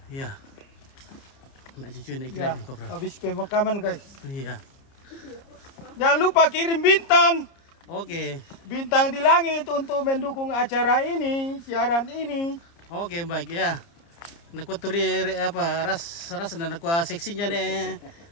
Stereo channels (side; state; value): right; late; 30 ms